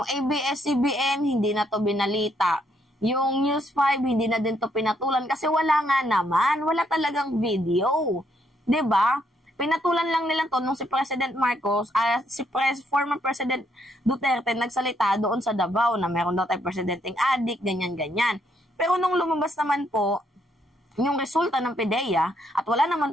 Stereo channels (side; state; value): both; normal; correlation 0.73